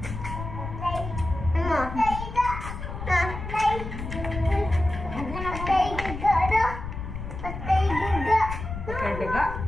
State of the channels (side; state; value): left; noise; rumble, 7 dB below the sound